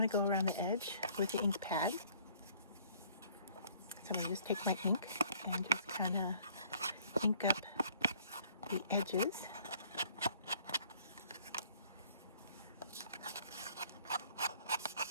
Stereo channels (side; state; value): both; inverted; correlation -0.59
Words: to go around the edge with the ink pad. So I'm going to just take my ink and just kind of ink up the edges.